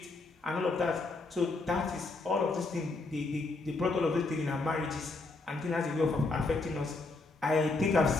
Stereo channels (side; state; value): right; quieter; 3.5 dB